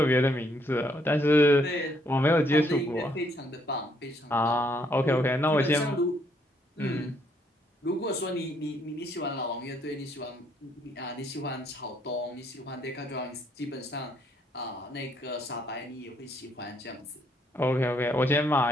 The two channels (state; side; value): normal; both; correlation 0.70